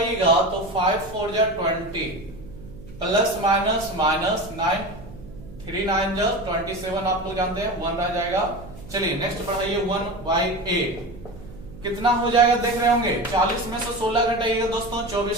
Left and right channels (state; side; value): noise; right; hum, 16 dB below the sound